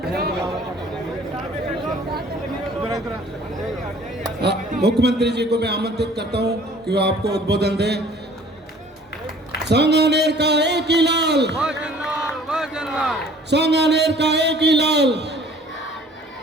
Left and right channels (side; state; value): both; normal; correlation 0.52